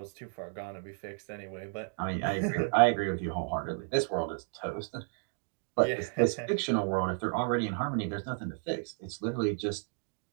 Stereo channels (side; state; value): left; silent; 56 dB below the other